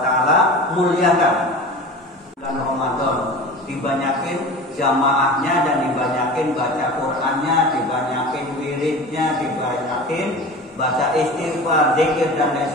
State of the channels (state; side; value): normal; both; correlation 0.35